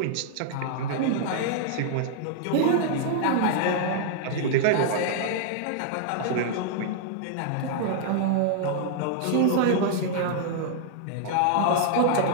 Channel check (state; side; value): different; both; correlation -0.01